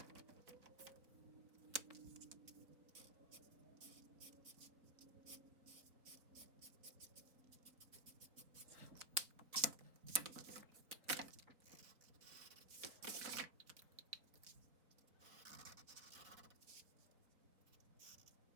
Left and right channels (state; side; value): late; left; 4.1 ms